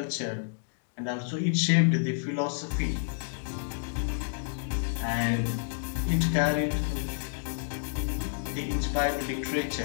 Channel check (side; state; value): right; silent; digital silence